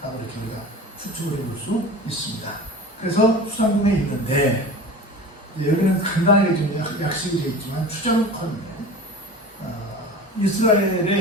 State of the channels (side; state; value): both; normal; correlation 0.36